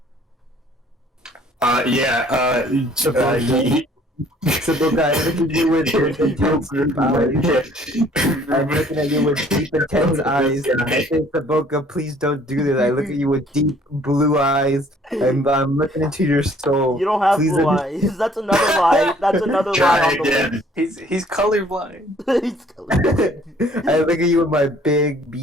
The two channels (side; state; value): both; normal; correlation 0.57